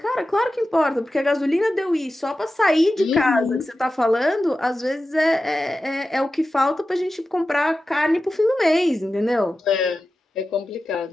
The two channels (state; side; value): normal; both; correlation 0.93